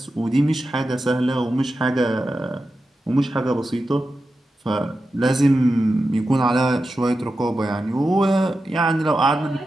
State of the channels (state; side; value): normal; both; correlation 0.91